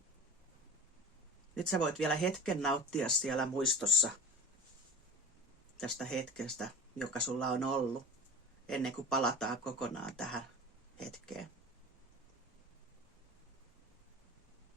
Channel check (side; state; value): both; normal; correlation 0.35